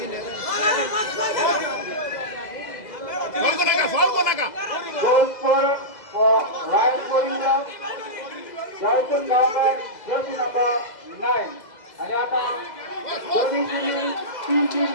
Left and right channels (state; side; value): late; right; 2.0 ms